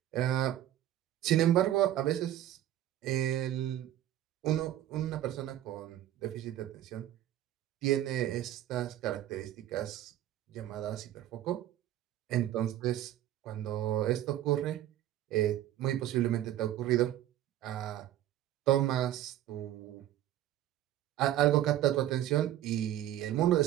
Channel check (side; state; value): left; quieter; 12.7 dB